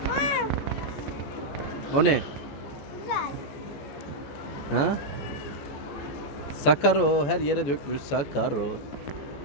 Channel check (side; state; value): right; late; 14 ms